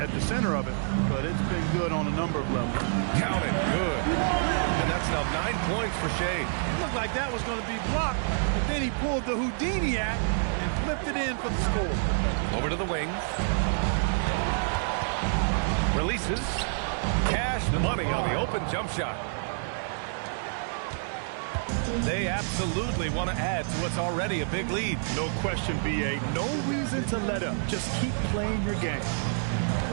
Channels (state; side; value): silent; left; 59 dB below the other